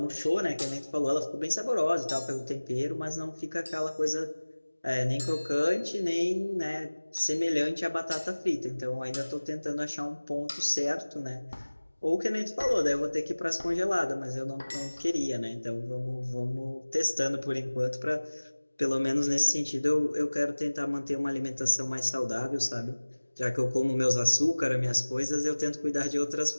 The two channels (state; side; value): inverted; both; correlation -1.00